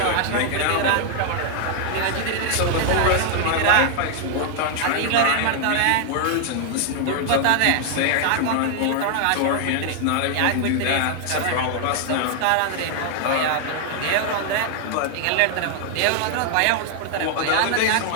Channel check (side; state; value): both; different; correlation 0.00